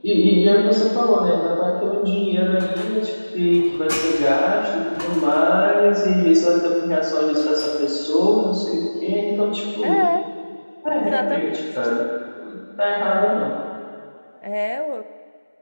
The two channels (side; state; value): both; inverted; correlation -1.00